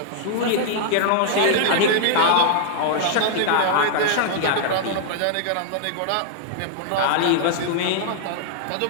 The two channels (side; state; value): both; different; correlation -0.01